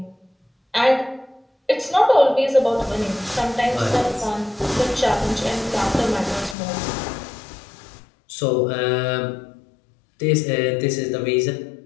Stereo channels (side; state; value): right; drops out; at 6.6 s